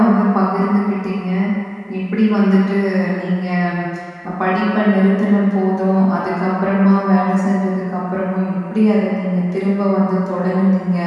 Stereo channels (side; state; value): both; identical; correlation 1.00